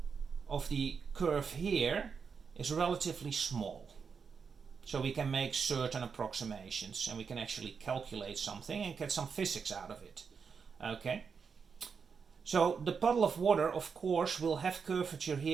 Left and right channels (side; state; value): left; quieter; 5.9 dB